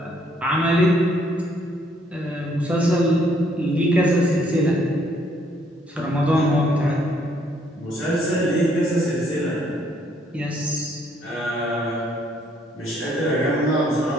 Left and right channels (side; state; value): both; normal; correlation 0.67